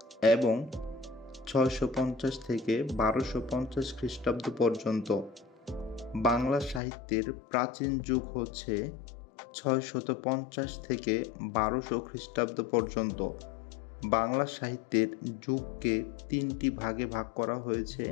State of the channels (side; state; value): right; drops out; at 6.8 s